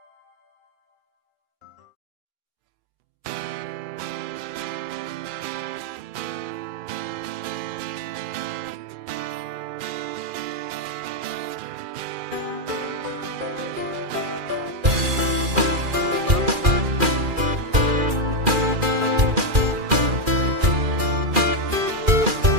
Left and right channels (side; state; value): left; late; 2.4 ms